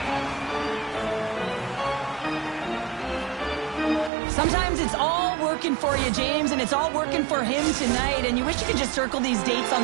Sometimes it's all working for you, James, and it's all working for him tonight, and you wish you could just circle these dates on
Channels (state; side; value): drops out; left; at 4.1 s